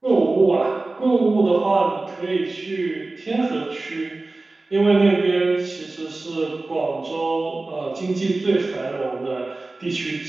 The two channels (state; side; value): quieter; left; 3.2 dB